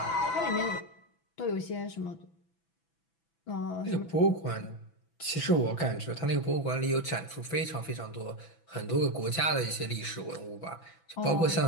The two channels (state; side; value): late; right; 6.0 ms